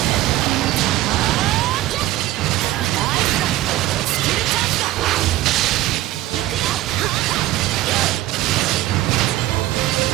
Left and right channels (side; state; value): left; quieter; 15.9 dB